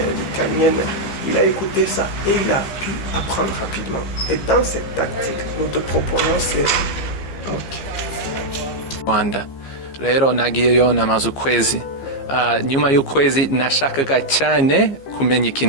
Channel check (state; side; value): late; right; 15 ms